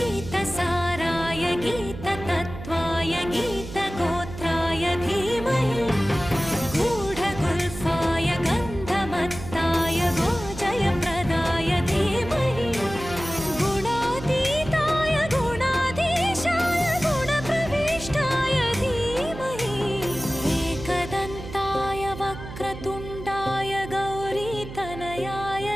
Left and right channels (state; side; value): noise; right; hum, 11 dB below the sound